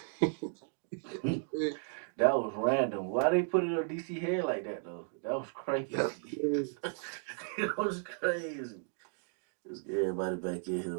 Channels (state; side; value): silent; left; 55 dB below the other